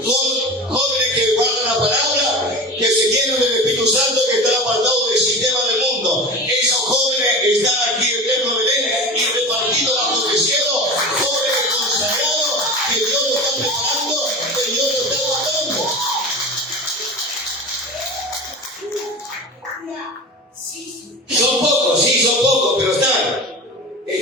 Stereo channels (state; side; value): normal; both; correlation 0.31